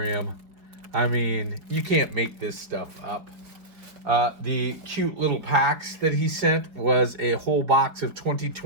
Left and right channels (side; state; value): left; late; 4.5 ms